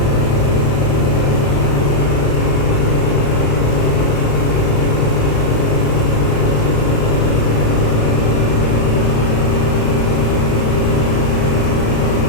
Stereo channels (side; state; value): right; late; 36 ms